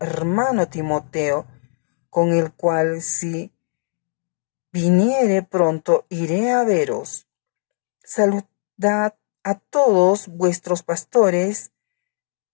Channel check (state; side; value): silent; right; 59 dB below the other